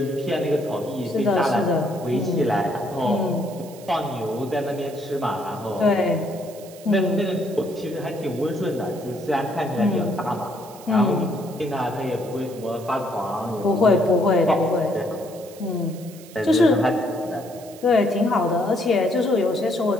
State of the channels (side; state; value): right; noise; hiss, 20 dB below the sound